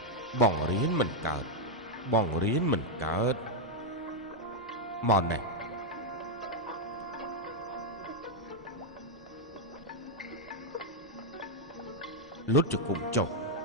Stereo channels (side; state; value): both; normal; correlation 0.00